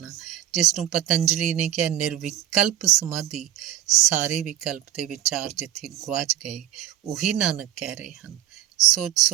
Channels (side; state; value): left; quieter; 12.2 dB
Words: ਜਿਸ ਨੂੰ ਪਤੰਜਲੀ ਨੇ ਕਿਹਾ ਨਿਰਵਿਕਲਪ ਸਮਾਧੀ, ਸਾਰੇ ਵਿਕਲਪ ਦੇ ਵਿਚਾਰ ਜਿੱਥੇ ਗੁਆਚ ਗਏ, ਉਹੀ ਨਾਨਕ ਕਹਿ ਰਹੇ ਹਨ। ਸੋਚ